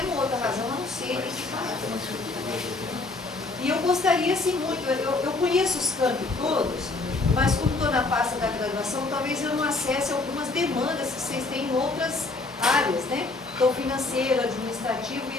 outra razão a não ser equiparar. E eu gostaria, assim, muito, eu conheço os campos todos, mas como estou na pasta da graduação, talvez eu não acesse algumas demandas que vocês têm em outras áreas, né? Então, financeiro, administrativo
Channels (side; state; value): right; quieter; 3.4 dB